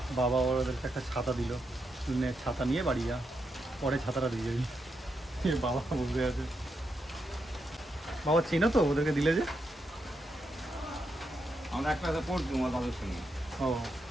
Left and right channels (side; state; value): both; normal; correlation 0.83